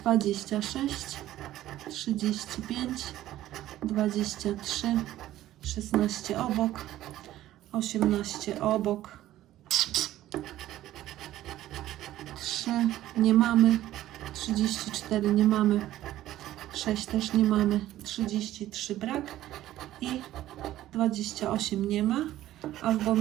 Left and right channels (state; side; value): quieter; left; 14.0 dB